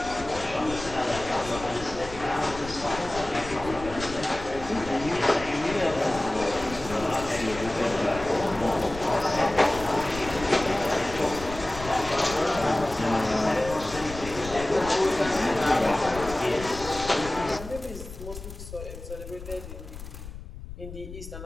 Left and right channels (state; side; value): noise; left; rumble, 12 dB below the sound